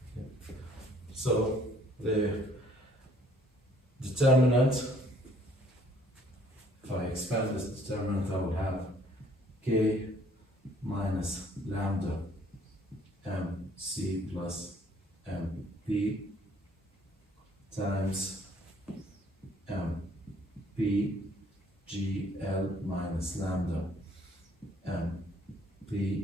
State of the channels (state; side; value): normal; both; correlation 0.60